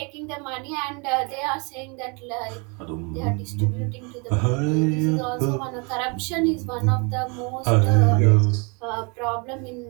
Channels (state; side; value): quieter; left; 32.7 dB